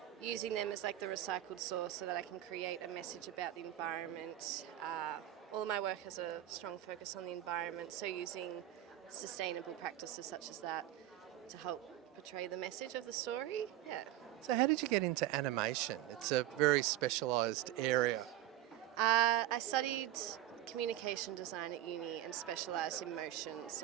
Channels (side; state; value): left; quieter; 13.4 dB